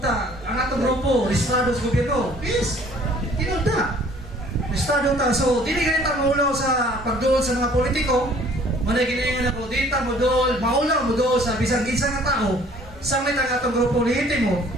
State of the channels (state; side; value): normal; both; correlation 0.55